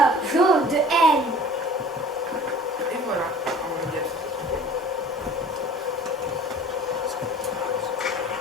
jaune, de haine. Et voilà, on y a tout.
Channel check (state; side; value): normal; both; correlation 0.46